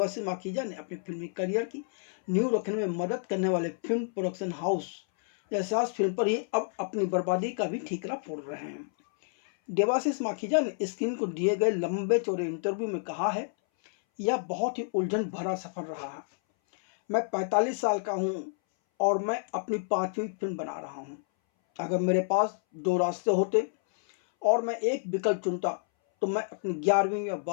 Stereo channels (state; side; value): silent; right; 58 dB below the other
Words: माखीजा ने अपनी फिल्मी करियर की नींव रखने में मदद करने वाले film production house Yash Raj film पर ही अब अपनी बर्बादी का भी ठीकरा फोड़ रहे हैं। देवाशीष माखीजा ने स्क्रीन को दिए गए लंबे चौड़े इंटरव्यू में कहा है, यह बहुत ही उलझन भरा सफर रहा है। मैं 45 साल का हूँ और मैं अपनी 5वीं फिल्म बना रहा हूँ। अगर मेरे पास 2 रास्ते होते और मैं एक विकल्प चुनता तो मैं अपनी 11वीं या